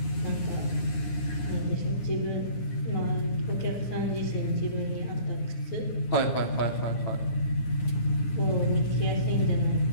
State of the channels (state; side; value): late; right; 9.7 ms